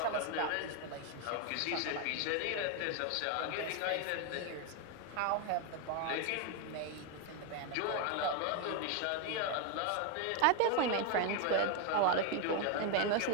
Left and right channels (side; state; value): both; different; correlation 0.01